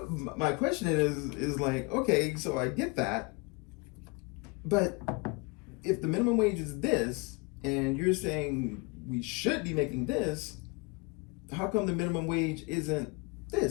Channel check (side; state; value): right; quieter; 28.7 dB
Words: my question is like, okay, so I get that, but if the minimum wage is this, and you're saying we should be making this, how come the minimum wage isn't